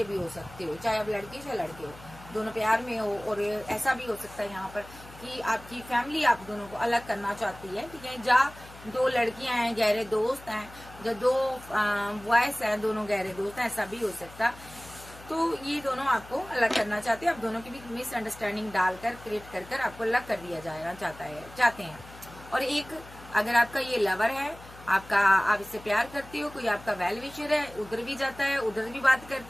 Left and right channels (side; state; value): left; noise; hum, 19 dB below the sound